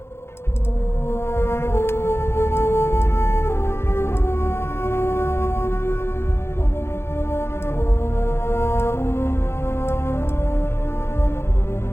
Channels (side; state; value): right; late; 0.12 ms